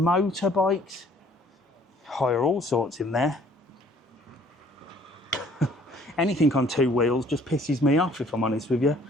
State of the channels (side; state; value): both; normal; correlation 0.58